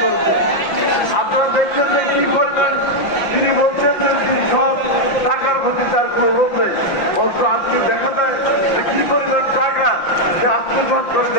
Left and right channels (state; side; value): late; right; 5.8 ms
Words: করেছে। আপনারা দেখছেন যে কি করবেন, তিনি বলছেন যে তিনি সব টাকার প্রতি তার কোনো লোভ নেই, অথচ আজকে দেখা যায় যে কি পরিমাণ টাকা সে আত্মসাৎ করে